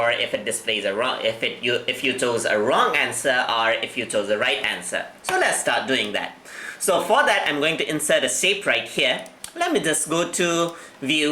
if it displays a wrong, if you chose a wrong answer or if you chose the right answer. So let's start doing that. So for that, I'm going to insert a shape right here. Let me just go to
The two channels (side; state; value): both; identical; correlation 1.00